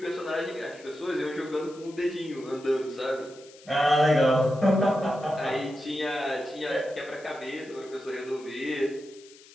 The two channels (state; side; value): noise; left; hiss, 23 dB below the sound